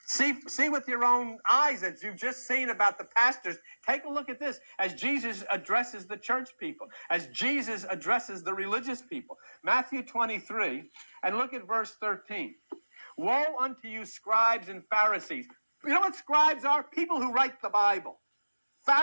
See with your own eyes as you've just seen about the pastors. Take a look at this as Jesus addresses the church people, as Jesus addresses the religious people. Matthew 23, and look at verse 13. Woe unto you, scribes and Pharisees. You know what scribes are? People who write the Bible.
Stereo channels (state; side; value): inverted; both; correlation -1.00